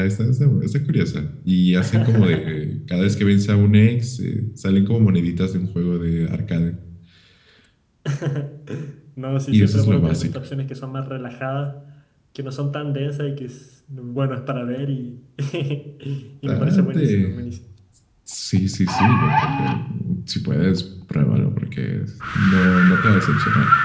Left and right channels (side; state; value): both; identical; correlation 1.00